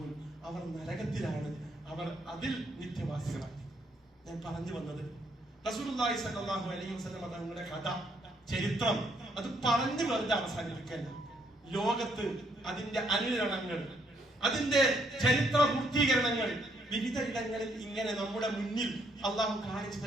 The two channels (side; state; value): both; normal; correlation 0.71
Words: അവർ നരകത്തിലാണ്, അവർ അതിൽ നിത്യവാസികളാണ്. ഞാൻ പറഞ്ഞു വന്നത് റസൂലുള്ളാഹി സ്വല്ലല്ലാഹു അലൈഹി വസല്ലം തങ്ങളുടെ കഥ, ചരിത്രം അത് പറഞ്ഞു വെറുതെ അവസാനിപ്പിക്കല്ല. ലോകത്ത് അതിന്റെ അനുരണങ്ങൾ, അതിന്റെ ചരിത്ര പൂർത്തീകരണങ്ങൾ വിവിധ ഇടങ്ങളിൽ ഇങ്ങനെ നമ്മുടെ മുന്നിൽ അള്ളാഹു കാണിച്ചു